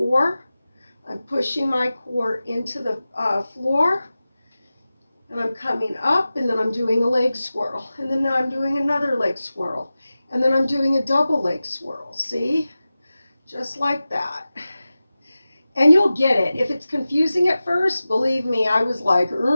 I'm pushing my core into the floor, and I'm coming up, and then I'm doing a leg swirl, and then I'm doing another leg swirl, and then I'm doing a double leg swirl. See? Just like that. And you'll get it. If it's confusing at first, believe me, I was like,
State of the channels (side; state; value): both; inverted; correlation -0.95